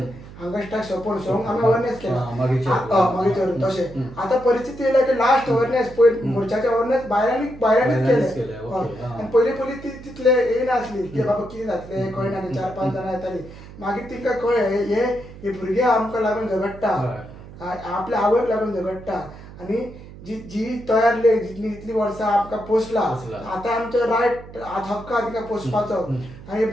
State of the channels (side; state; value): right; noise; hum, 17 dB below the sound